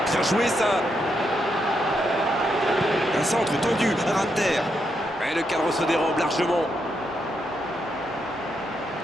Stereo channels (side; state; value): left; noise; hum, 27 dB below the sound